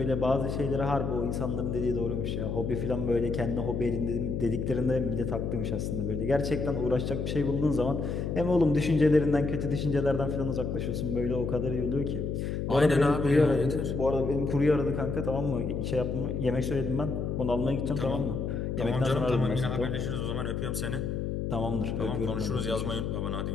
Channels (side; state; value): left; noise; hum, 2 dB below the sound